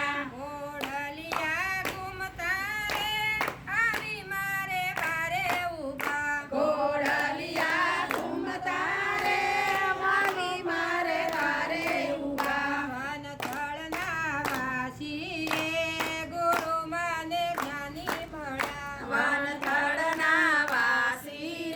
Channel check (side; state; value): both; identical; correlation 1.00